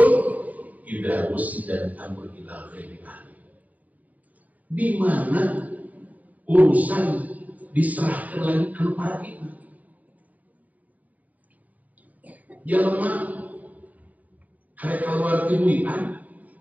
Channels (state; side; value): late; left; 0.075 ms